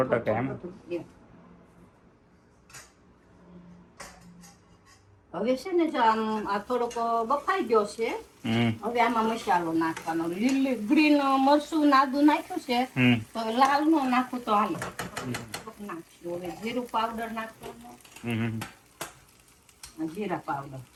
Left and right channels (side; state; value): both; identical; correlation 1.00